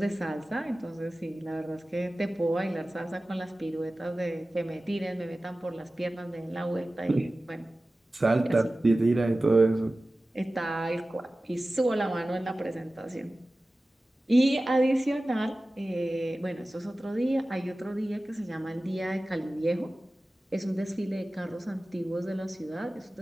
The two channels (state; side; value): normal; both; correlation 0.96